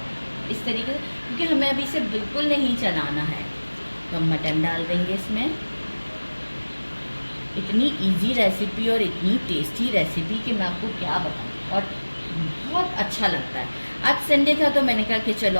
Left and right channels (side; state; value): both; inverted; correlation -1.00